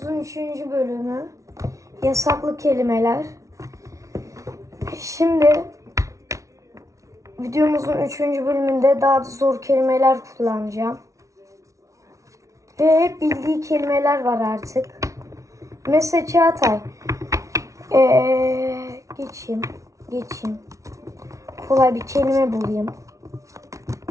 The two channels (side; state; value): left; late; 0.15 ms